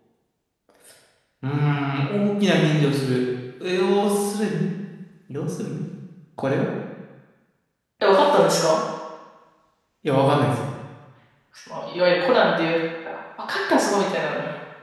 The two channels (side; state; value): both; identical; correlation 1.00